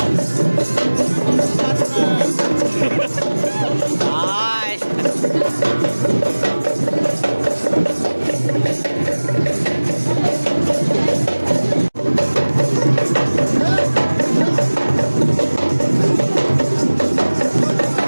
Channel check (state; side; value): inverted; both; correlation -1.00